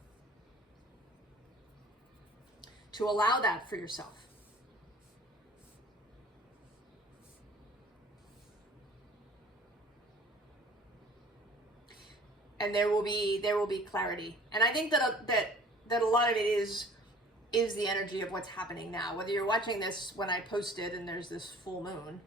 To allow that for yourself. And there will be clarity. And I think that a lot of it is the energy of what's happening now. Whether you're watching this when I posted and there's this full moon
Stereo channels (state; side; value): normal; both; correlation 0.49